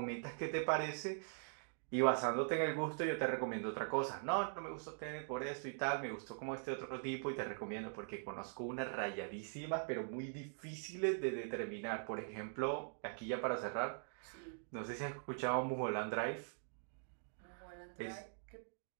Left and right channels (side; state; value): left; silent; digital silence